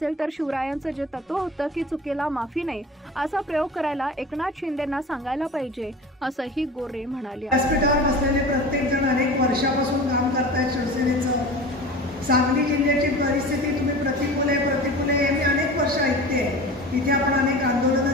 तर शिवरायांचं जे तत्व होतं की चुकीला माफी नाही, असा प्रयोग करायला एकनाथ शिंदेंना सांगायला पाहिजे, असंही गोरे म्हणाले. व्यासपीठावर बसलेले प्रत्येक जण अनेक वर्षापासून काम करतायत शिवसेनेचं. सांगली जिल्ह्याची परिस्थिती तुम्ही प्रतिकूल आहे मी अनेक वर्ष ऐकते. इथे आपण अनेक आंदोलनं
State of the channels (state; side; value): normal; both; correlation 0.36